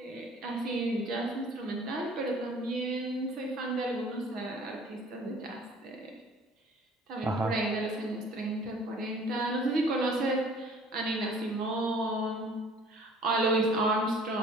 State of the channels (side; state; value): both; normal; correlation 0.52